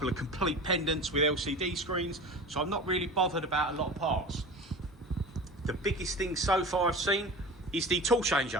of complete pendants with LCD screens, so I'm not really bothered about a lot of parts. The biggest thing so far I've seen is the tool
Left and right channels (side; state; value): both; normal; correlation 0.35